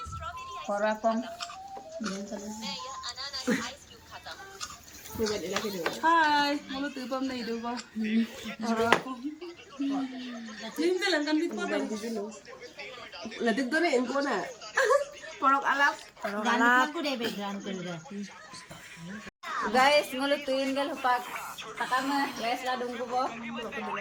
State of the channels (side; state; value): both; identical; correlation 1.00